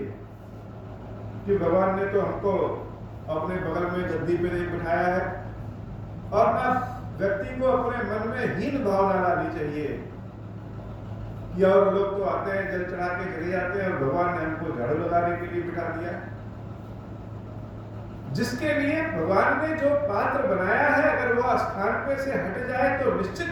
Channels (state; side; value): identical; both; correlation 1.00